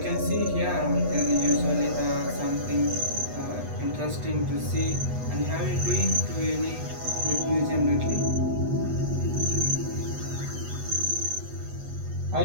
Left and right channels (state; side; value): late; left; 8.1 ms